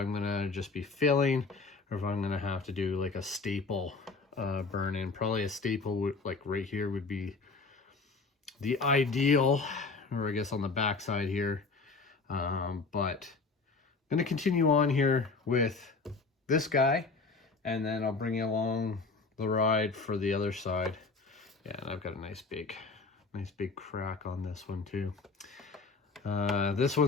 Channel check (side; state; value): right; quieter; 4.2 dB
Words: going to just be filling or if I'm going to have to do like a staple burn in. Probably a staple would, like right here, would be the ideal, or I guess on the back side here. But I'm going to continue on here with this guy, and then I'll bring you along the ride for the other side. Yeah, and I've got a nice big crack on this one too. This